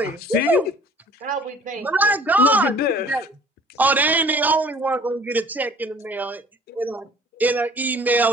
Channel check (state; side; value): normal; both; correlation 0.51